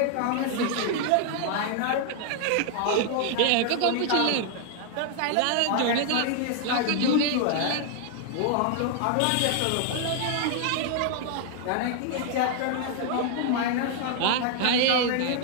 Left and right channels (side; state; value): both; different; correlation 0.00